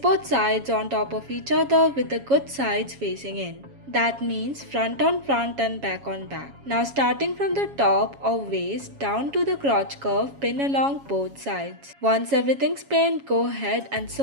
sides on top of each other with the good sides facing in. That means front on front and back on back. Now starting from the top of waist down to the crotch curve, pin along both sides. Once everything's pinned, go ahead and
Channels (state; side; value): late; left; 7.2 ms